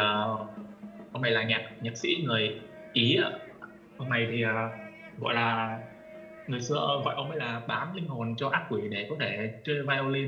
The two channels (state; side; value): identical; both; correlation 1.00